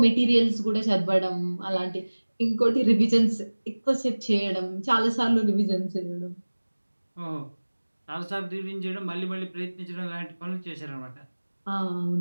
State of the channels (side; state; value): both; inverted; correlation -1.00